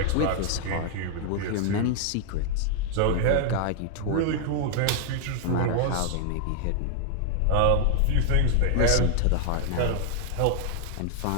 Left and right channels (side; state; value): both; different; correlation 0.00